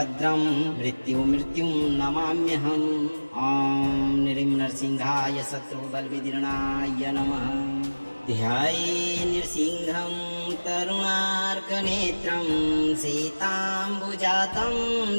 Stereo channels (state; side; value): inverted; both; correlation -1.00